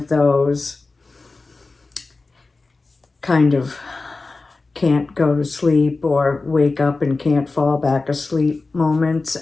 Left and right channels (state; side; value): quieter; right; 3.7 dB